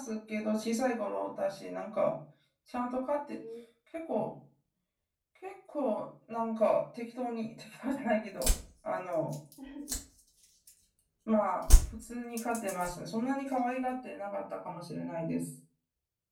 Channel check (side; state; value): both; identical; correlation 1.00